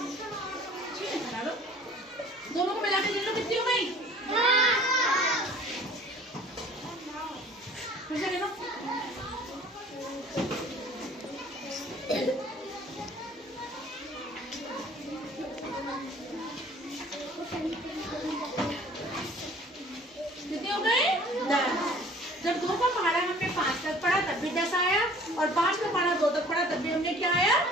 दोनों को मिला के गिन लो। कितनी हो गई? फिर से गिनो। कितने हो गए? 10। जब 2 का पहाड़ा हमने 5 तक पढ़ा तब भी 10 आया और 5 का पहाड़ा 2 तक पढ़ा तब भी हमने क्या आया?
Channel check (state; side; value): normal; both; correlation 0.50